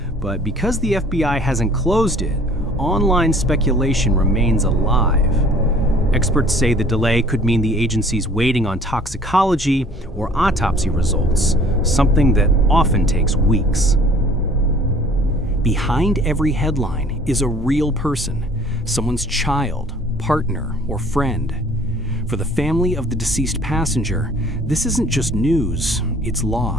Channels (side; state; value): both; normal; correlation 0.53